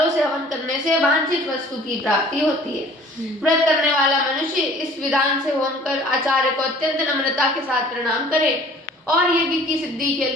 से हवन करने से वांछित वस्तु की प्राप्ति होती है। व्रत करने वाला मनुष्य इस विधान से होम कर आचार्य को अत्यंत नम्रता के साथ प्रणाम करे और यज्ञ की सिद्धि के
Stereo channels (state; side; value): normal; both; correlation 0.50